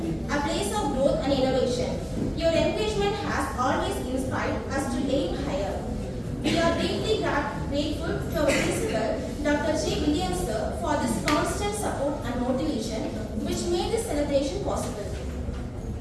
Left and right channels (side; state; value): both; identical; correlation 1.00